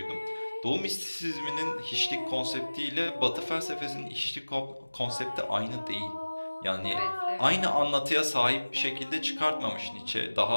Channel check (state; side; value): inverted; both; correlation -1.00